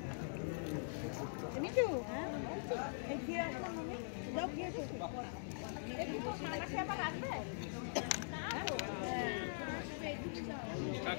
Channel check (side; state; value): right; silent; digital silence